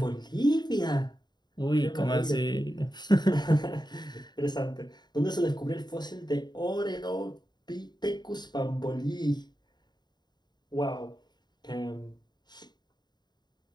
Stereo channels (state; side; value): late; right; 0.21 ms